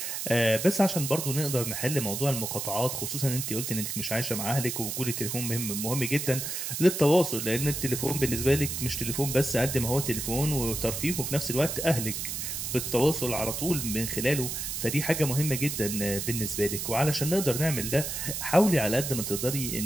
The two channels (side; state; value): right; noise; hiss, 4 dB below the sound